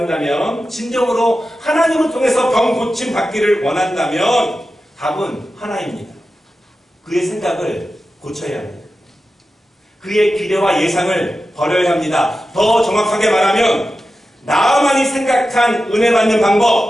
진정으로 하나님을 통해서 병 고침 받기를 원한다면 답은 하나입니다. 그의 생각을 고쳐야 합니다. 그의 기대와 예상을 버려야 합니다. 더 정확하게 말하면 나아만이 생각한 은혜 받는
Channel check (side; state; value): both; normal; correlation 0.92